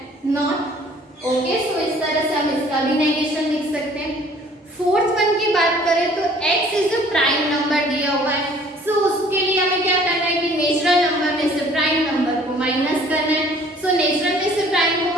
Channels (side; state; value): both; normal; correlation 0.54